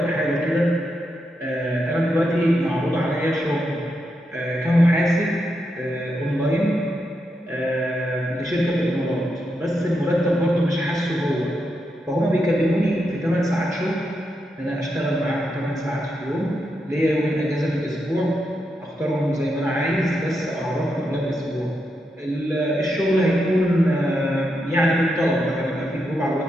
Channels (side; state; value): both; normal; correlation 0.84